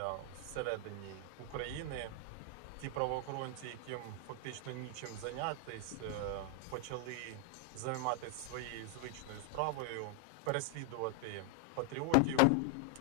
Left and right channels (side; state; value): both; different; correlation 0.00